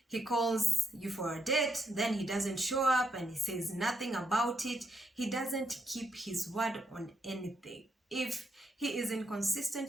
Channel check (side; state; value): both; normal; correlation 0.78